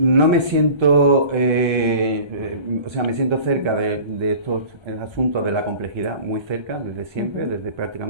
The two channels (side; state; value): left; late; 1.3 ms